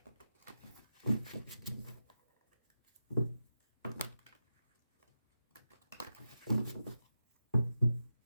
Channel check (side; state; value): both; inverted; correlation -0.91